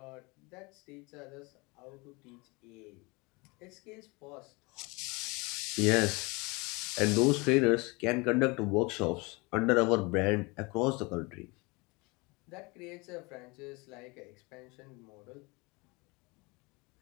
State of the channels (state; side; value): quieter; right; 26.7 dB